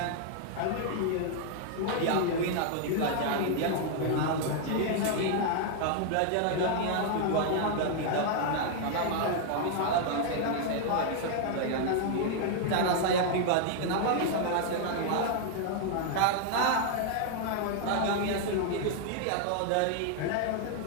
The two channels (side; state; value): both; different; correlation 0.00